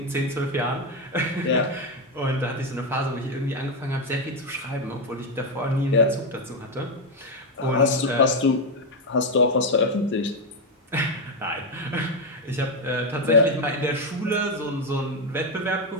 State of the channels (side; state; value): both; normal; correlation 0.07